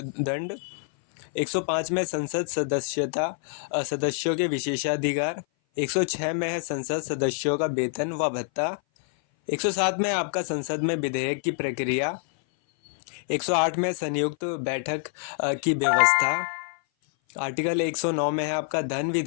दंड। 105 में संसद सदस्यों के विशेषाधिकार। 106 में है संसद सदस्यों का वेतन व भत्ता। 107 में आपका संसद में विधेयक की प्रक्रिया। 108 में संयुक्त बैठक की व्यवस्था। आर्टिकल 109 में है आपका धन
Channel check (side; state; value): right; silent; 57 dB below the other